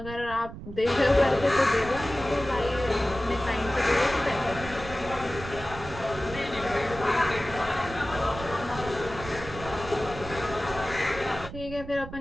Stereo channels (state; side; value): noise; right; rumble, 12 dB below the sound